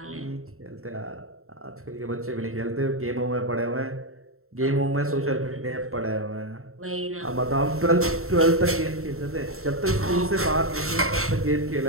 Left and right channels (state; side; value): late; left; 0.63 ms